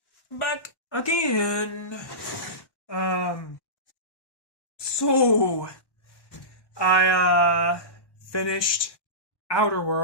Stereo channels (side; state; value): right; late; 1.1 ms